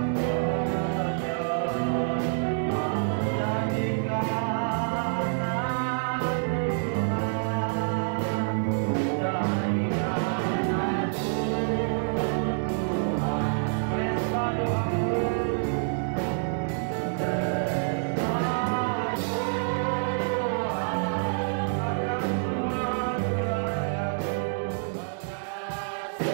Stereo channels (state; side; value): silent; left; 60 dB below the other